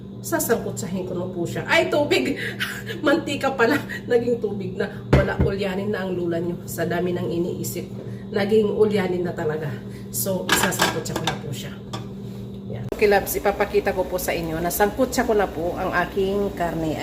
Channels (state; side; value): identical; both; correlation 1.00